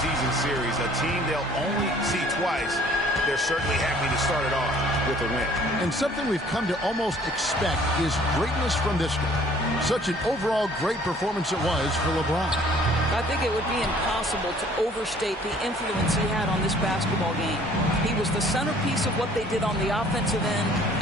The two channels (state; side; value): normal; both; correlation 0.55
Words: series, a team they'll only see twice. They're certainly happy to start it off with a win. And something we've come to almost expect is greatness from this game. Such an overall great performance it was for LeBron. I think it would be impossible to overstate the influence he had on this basketball game. He was the centerpiece of what they did on the offensive end